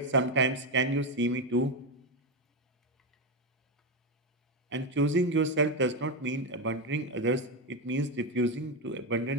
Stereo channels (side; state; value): both; normal; correlation 0.10